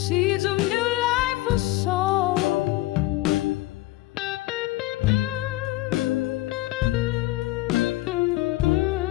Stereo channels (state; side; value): quieter; right; 17.9 dB